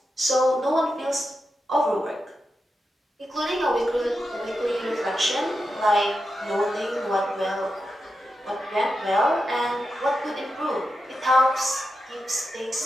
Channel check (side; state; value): both; normal; correlation 0.88